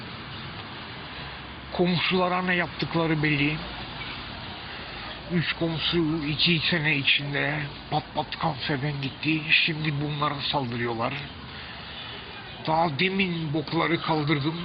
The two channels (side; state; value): both; identical; correlation 1.00